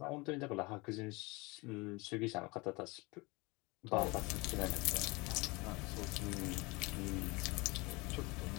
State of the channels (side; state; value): right; quieter; 25.1 dB